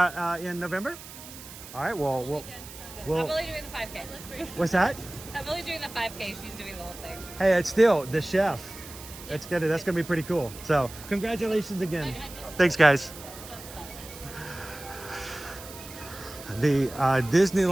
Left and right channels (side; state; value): right; noise; hiss, 15 dB below the sound